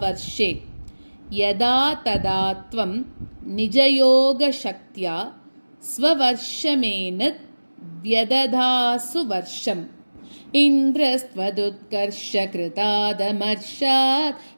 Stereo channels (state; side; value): inverted; both; correlation -1.00